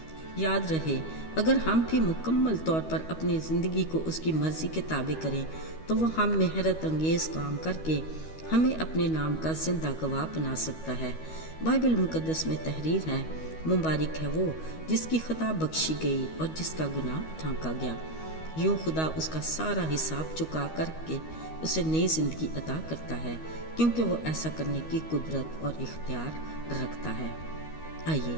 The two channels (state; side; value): late; right; 13 ms